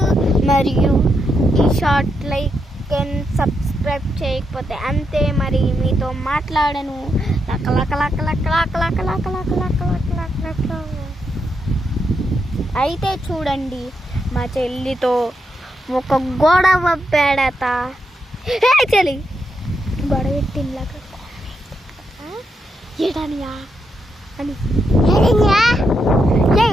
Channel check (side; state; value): both; normal; correlation 0.82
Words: మరియు ఈ షాట్ లైక్ అండ్ సబ్స్క్రైబ్ చేయకపోతే అంతే. మరి మీతో మాట్లాడను. లక్క లక్క లక్క లక్క లక్క లక్క లక్క లక్క లక్క లక్క లక్క లక్క. అయితే చూడండి, మా చెల్లితో ఒక గొడవ పెడత. చెల్లి గొడవ పెట్టిందాక ఏటనియా అని